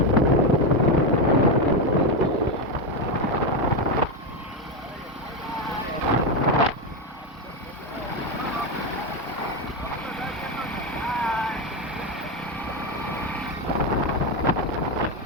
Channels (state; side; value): normal; both; correlation 0.10